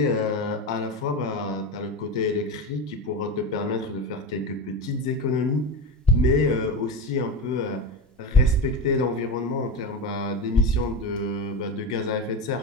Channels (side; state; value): both; normal; correlation 0.21